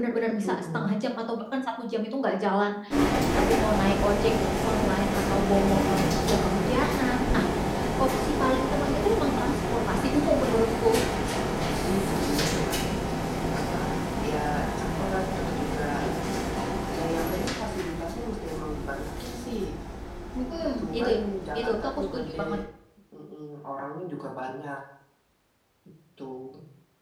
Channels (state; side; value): identical; both; correlation 1.00